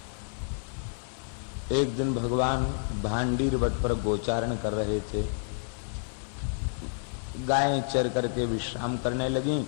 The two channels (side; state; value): right; silent; 58 dB below the other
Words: एक दिन भगवान भांडीर वट पर गोचारण कर रहे थे। गायें चर करके विश्राम करने लगी।